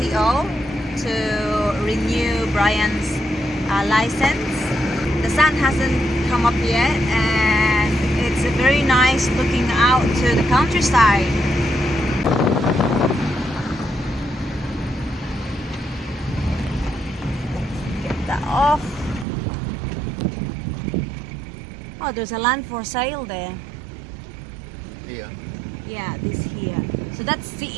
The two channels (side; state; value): left; drops out; at 19.2 s